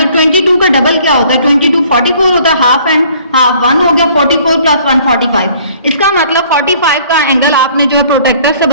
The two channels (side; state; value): both; inverted; correlation -0.57